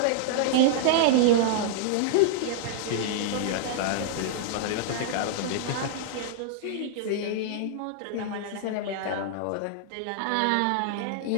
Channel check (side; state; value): both; different; correlation -0.01